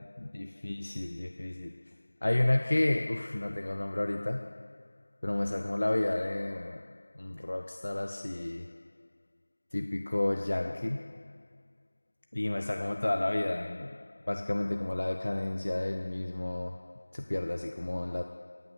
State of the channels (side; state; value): both; inverted; correlation -1.00